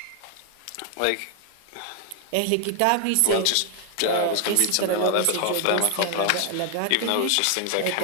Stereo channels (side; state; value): both; different; correlation 0.00